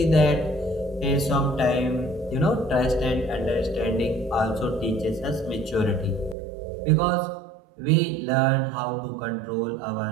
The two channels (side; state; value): left; drops out; at 6.4 s